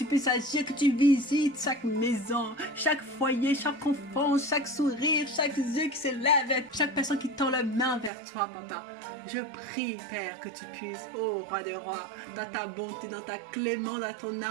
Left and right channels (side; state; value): left; drops out; at 8.1 s